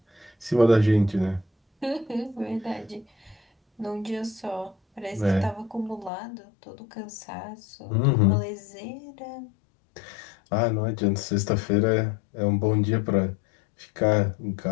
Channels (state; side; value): drops out; right; at 6.1 s